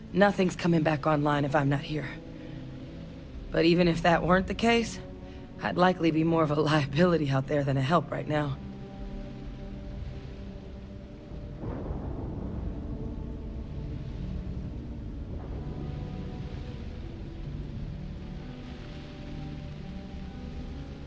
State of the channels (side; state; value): both; identical; correlation 1.00